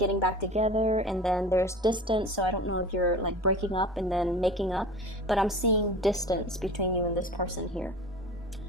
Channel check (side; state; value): both; normal; correlation 0.37